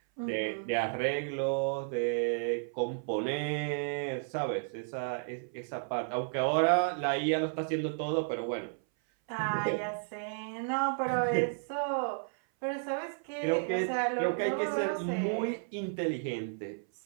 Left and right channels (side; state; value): left; silent; 56 dB below the other